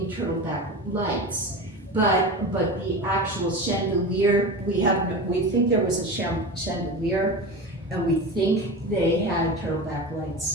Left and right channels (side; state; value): both; normal; correlation 0.27